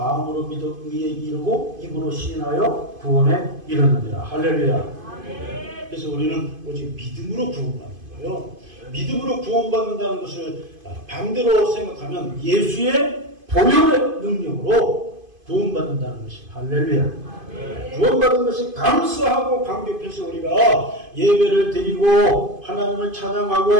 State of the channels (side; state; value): left; late; 2.5 ms